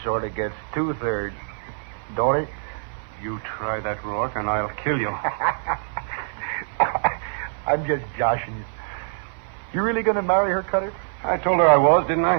sort of gets 2/3, don't it? You try that, Rourke, and I'll kill you. I'm just joshing you. You really going to marry her, Cutter? I told her I was, didn't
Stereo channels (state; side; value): silent; left; 57 dB below the other